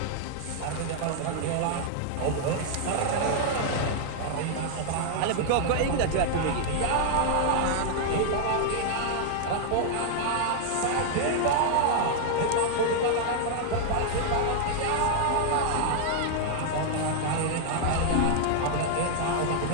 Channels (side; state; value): both; different; correlation -0.01